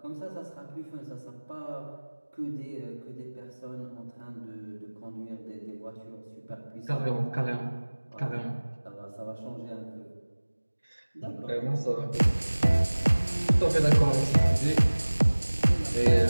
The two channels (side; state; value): both; inverted; correlation -1.00